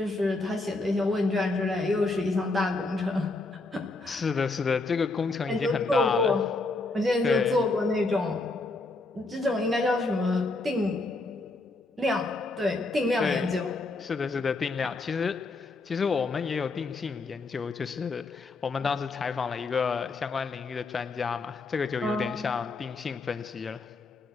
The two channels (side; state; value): right; quieter; 3.4 dB